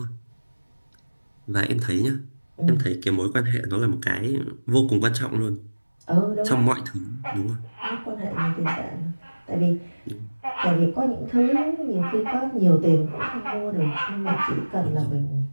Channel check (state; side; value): inverted; both; correlation -1.00